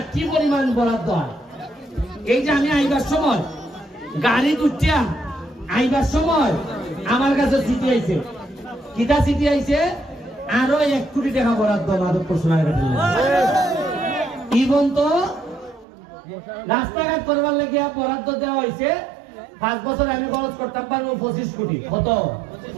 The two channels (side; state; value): left; drops out; at 15.9 s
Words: কি পরিমাণ বরাদ্দ হয়। এই যে আমি আইবার সময় গাড়ি উঠিয়া আইবার সময় আমার কাছে চিঠি আইছে, কিটা চিঠি আইছে, আরো 1 কোটি টাকা বরাদ্দ মাধবপুর সোনারঘাট। ইবন তো রাস্তাঘাট করবার লাগিয়া বরাদ্দ দেওয়া হয়েছে 5 বছর আমি খরচ করতাম পারবো 25 কোটি। কত?